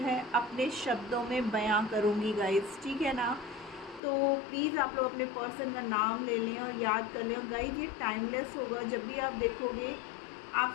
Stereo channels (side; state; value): right; drops out; at 4.0 s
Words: है अपने शब्दों में बयां करूँगी गाइज, ठीक है ना। तो प्लीज़ आप लोग अपने पर्सन का नाम ले लें और याद कर लें। और गाइज ये टाइमलेस होगा, जब भी आप देखोगे